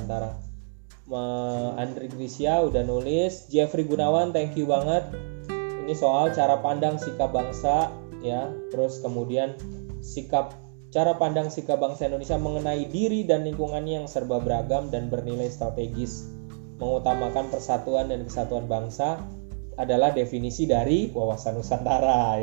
Andri Grisya udah nulis, Jeffrey Gunawan thank you banget. Ini soal cara pandang sikap bangsa ya, terus kemudian cara pandang sikap bangsa Indonesia mengenai diri dan lingkungannya yang serba beragam dan bernilai strategis, mengutamakan persatuan dan kesatuan bangsa adalah definisi dari Wawasan Nusantara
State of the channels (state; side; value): silent; left; 61 dB below the other